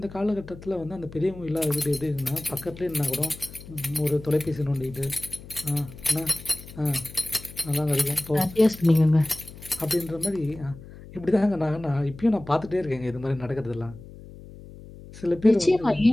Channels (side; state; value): left; noise; hum, 17 dB below the sound